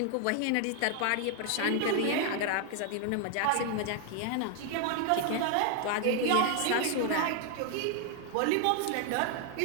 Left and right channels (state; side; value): different; both; correlation 0.00